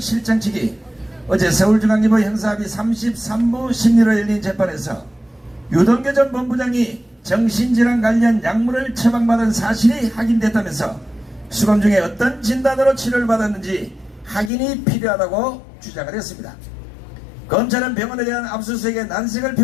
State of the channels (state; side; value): drops out; right; at 14.5 s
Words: 측이 어제 서울중앙지법 형사합의 33부 심리로 열린 재판에서 유동규 전 본부장이 정신질환 관련 약물을 처방받은 사실이 확인됐다면서 수감 중에 어떤 진단으로 치료를 받았는지 확인이 필요하다고 주장을 했습니다. 검찰은 병원에 대한 압수수색에 난색을